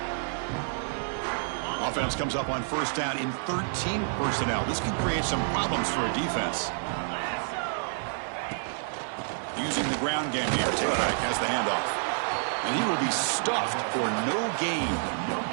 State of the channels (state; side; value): silent; left; digital silence